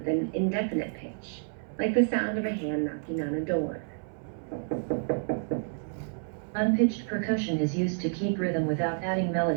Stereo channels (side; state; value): left; silent; 58 dB below the other